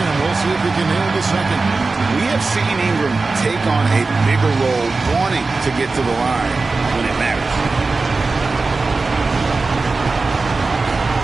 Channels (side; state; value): left; quieter; 3.8 dB